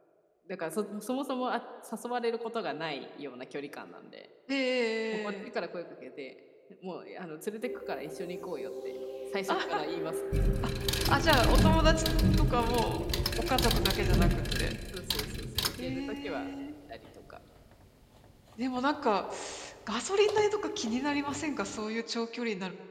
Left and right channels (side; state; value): both; identical; correlation 1.00